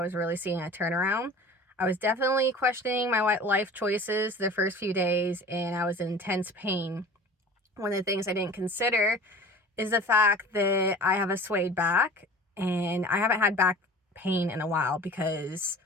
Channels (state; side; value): normal; both; correlation 0.41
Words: really seeing a turnaround. I was definitely questioning my life choices the first few days, and I was in intense pain. One of the things I didn't consider is the fact that I have a swayed back, and I haven't had back pain in a while because